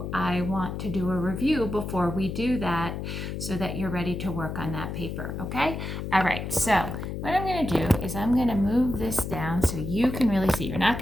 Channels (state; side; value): noise; left; hum, 5 dB below the sound